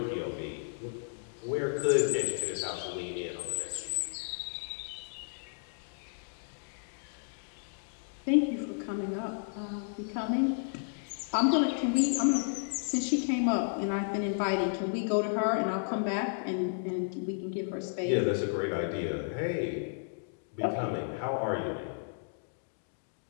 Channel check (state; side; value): silent; right; digital silence